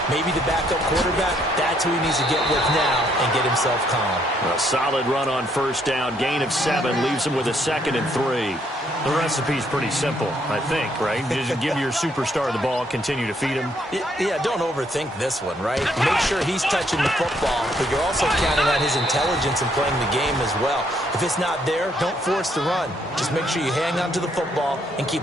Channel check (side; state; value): both; normal; correlation 0.70